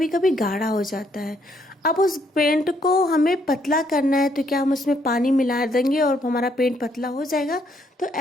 कभी गाढ़ा हो जाता है। अब उस पेंट को हमें पतला करना है तो क्या हम उसमें पानी मिला देंगे और हमारा पेंट पतला हो जाएगा? तो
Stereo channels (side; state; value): both; normal; correlation 0.71